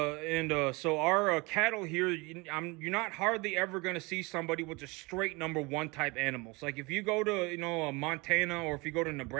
our cattle here, you're not hardly ever going to see somebody with just straight number one type animals. Like if you go to Montana, or if you go to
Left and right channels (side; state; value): left; quieter; 25.8 dB